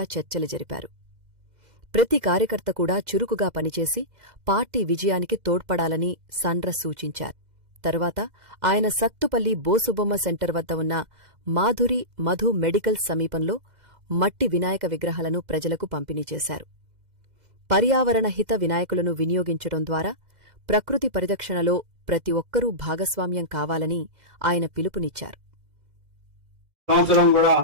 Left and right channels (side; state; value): left; late; 2.0 ms